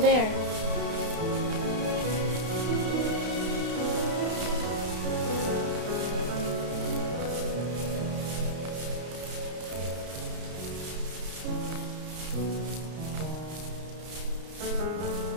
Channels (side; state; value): left; late; 32 ms